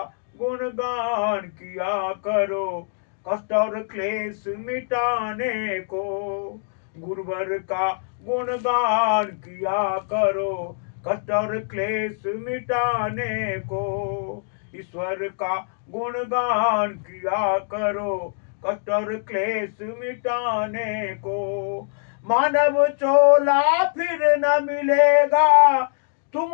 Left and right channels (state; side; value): silent; right; digital silence